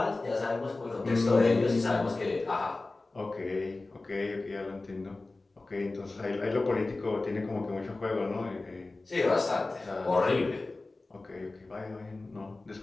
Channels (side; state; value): right; quieter; 3.2 dB